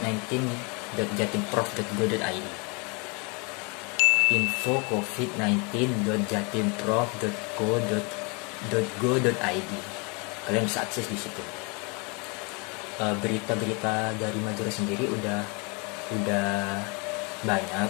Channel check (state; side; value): quieter; right; 31.5 dB